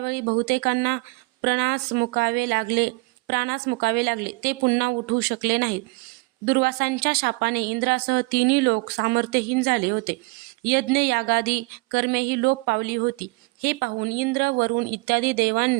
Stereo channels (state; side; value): quieter; left; 26.8 dB